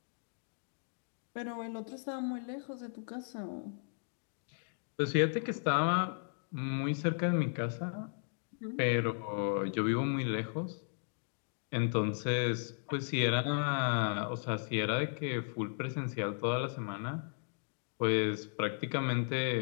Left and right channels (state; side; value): silent; right; digital silence